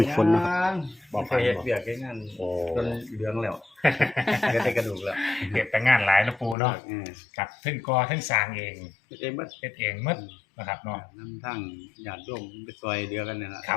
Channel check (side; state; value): right; drops out; at 6.6 s